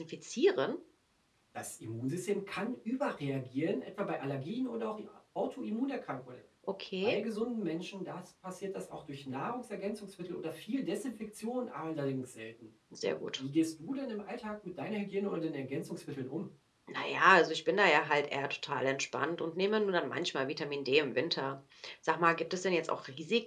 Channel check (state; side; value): identical; both; correlation 1.00